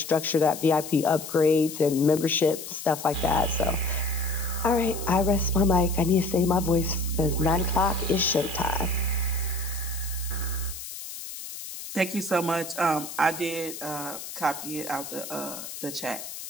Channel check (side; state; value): left; noise; hiss, 10 dB below the sound